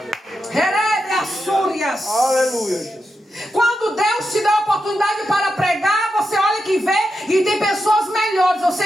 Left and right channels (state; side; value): normal; both; correlation 0.87